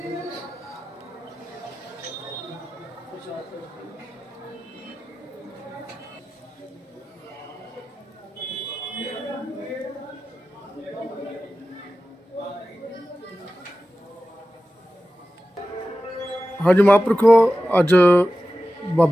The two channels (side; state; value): both; normal; correlation 0.94